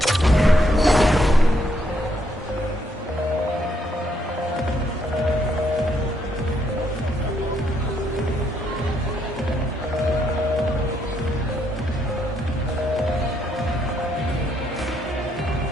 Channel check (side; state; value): both; normal; correlation 0.74